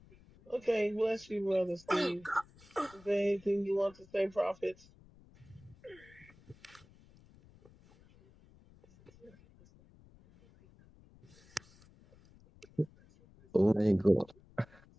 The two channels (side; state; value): left; noise; rumble, 26 dB below the sound